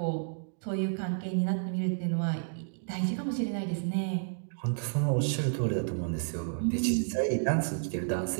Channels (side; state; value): left; silent; digital silence